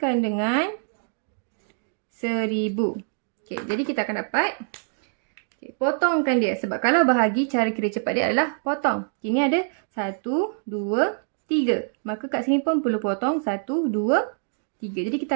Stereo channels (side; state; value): left; silent; digital silence